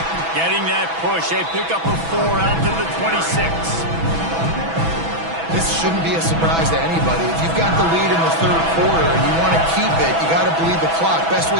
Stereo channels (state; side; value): late; left; 6.1 ms